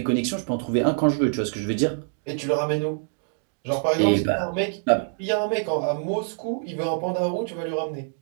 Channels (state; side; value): silent; left; digital silence